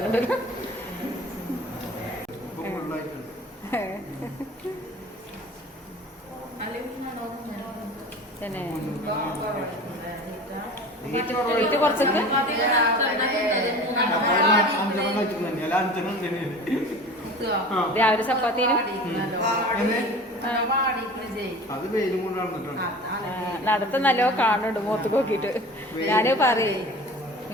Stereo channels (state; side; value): normal; both; correlation 0.39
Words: കുറച്ചൊക്കെ രാവിലെ ചപ്പാത്തിനും നടത്ത നല്ലോ കാണുന്നുണ്ട് മുഖത്ത് നോക്കിട്ട് ഞാന് പറയേ